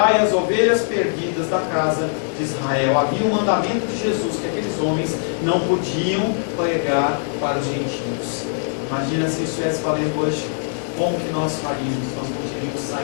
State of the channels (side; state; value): right; silent; digital silence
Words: as ovelhas perdidas da casa de Israel. Havia um mandamento de Jesus que aqueles homens não podiam pregar para os gentios. Imagina se isso estivesse valendo hoje, como que nós faríamos? Nós não teríamos